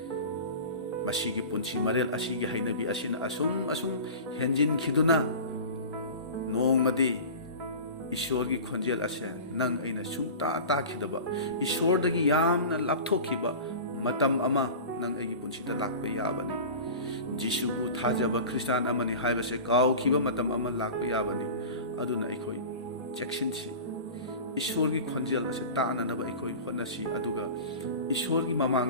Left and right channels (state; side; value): inverted; both; correlation -0.35